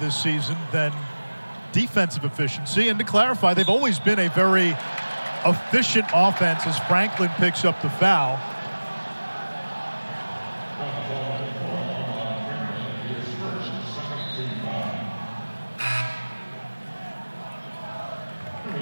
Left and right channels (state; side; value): inverted; both; correlation -1.00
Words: season than defensive efficiency. And to clarify, they've always been a very efficient offense as Franklin picks up the foul.